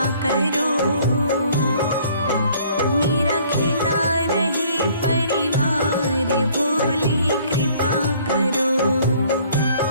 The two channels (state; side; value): inverted; both; correlation -0.58